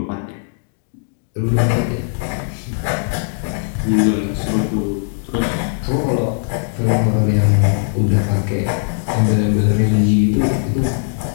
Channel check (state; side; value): silent; right; digital silence